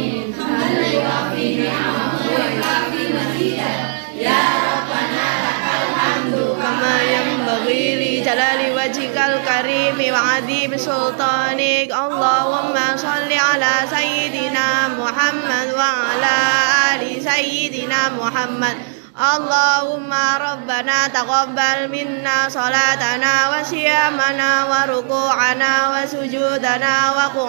Hamdan yuwafi ni'amahu wa yukafi mazidah. Ya Rabbana lakal hamdu Kama yanbaghi li jalali wajhikal karimi wa adhim sultanik. Allahumma salli ala sayyidina Muhammad wa ala ali sayyidina Muhammad. Allahumma rabbana taqabbal minna salatana wa siyamana wa ruku'ana wa sujudana wa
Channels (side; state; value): left; silent; digital silence